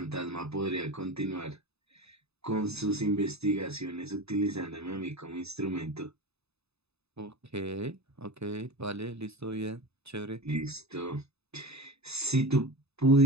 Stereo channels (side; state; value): left; late; 0.79 ms